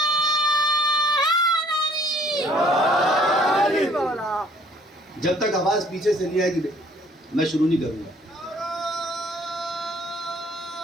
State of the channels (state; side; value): normal; both; correlation 0.59